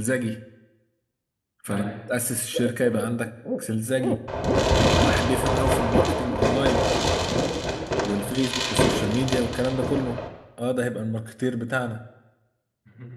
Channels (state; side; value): identical; both; correlation 1.00